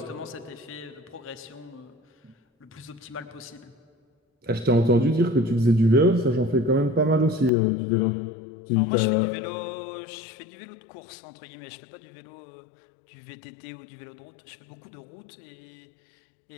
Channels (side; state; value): right; drops out; at 7.5 s